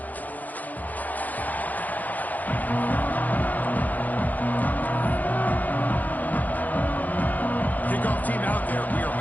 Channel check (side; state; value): right; late; 0.081 ms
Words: Team out there, we are